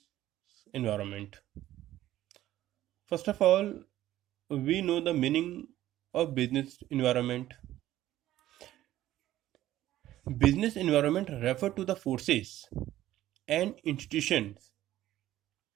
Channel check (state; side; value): quieter; left; 14.0 dB